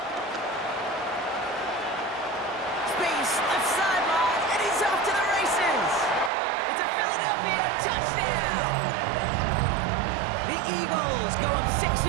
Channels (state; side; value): drops out; left; at 6.3 s